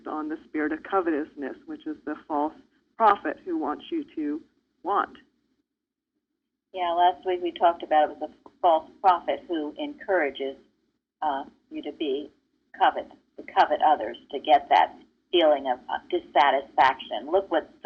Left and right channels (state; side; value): identical; both; correlation 1.00